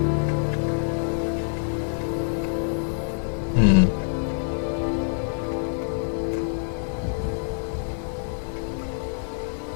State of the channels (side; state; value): right; silent; digital silence